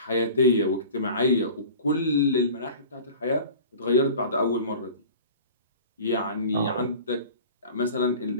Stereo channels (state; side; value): inverted; both; correlation -0.41